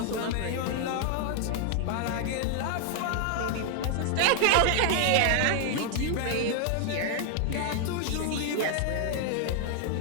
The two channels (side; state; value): both; different; correlation 0.00